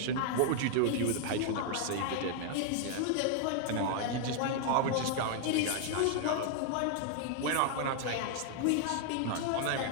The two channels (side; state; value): both; different; correlation 0.00